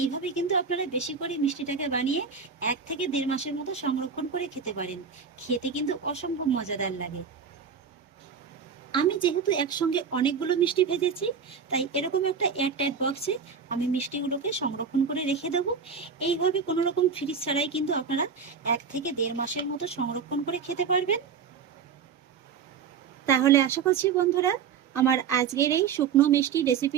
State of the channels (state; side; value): quieter; left; 6.2 dB